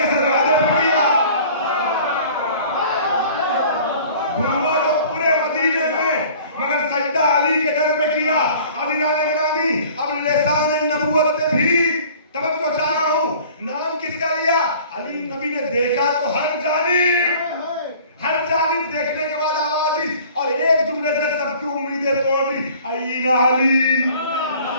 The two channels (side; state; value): both; inverted; correlation -0.49